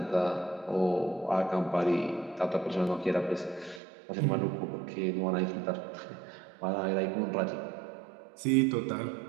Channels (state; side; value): drops out; left; at 3.8 s